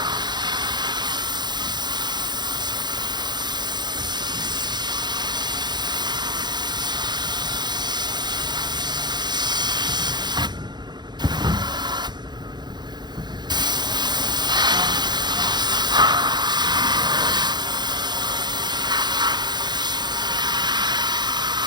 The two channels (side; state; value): left; late; 0.21 ms